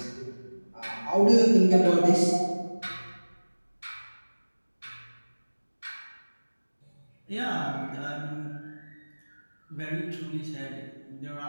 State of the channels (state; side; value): inverted; both; correlation -1.00